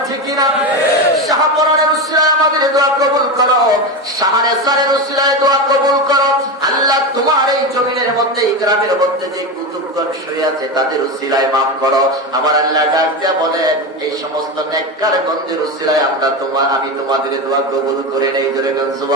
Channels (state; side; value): normal; both; correlation 0.18